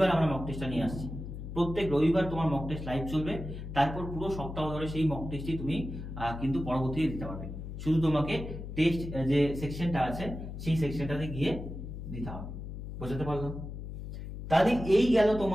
আমরা মক টেস্টটা নিয়ে আসছি। প্রত্যেক রবিবার তোমার মক টেস্ট লাইভ চলবে, তারপর পুরো সপ্তাহ ধরে সেই মক টেস্টই তুমি কিন্তু পরবর্তীতে দিতে পারবে। শুধু তোমাকে টেস্ট যে সেকশনটা আছে সেই সেকশনটাতে গিয়ে দিতে হবে। বুঝতে পারলাম? তাহলে এই গেল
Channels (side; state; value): left; noise; hum, 8 dB below the sound